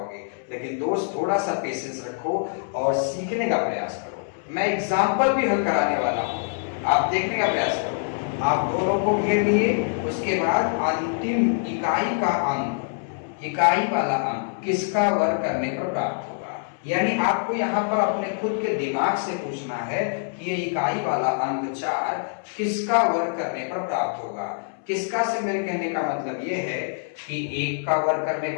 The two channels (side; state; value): right; silent; 62 dB below the other